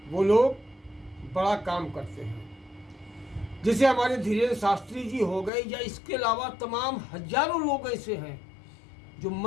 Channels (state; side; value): drops out; right; at 5.5 s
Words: वो लोग बड़ा काम करते हैं। जैसे हमारे धीरेन्द्र शास्त्री जी हो गए, या इसके अलावा तमाम हजारों लोग ऐसे हैं जो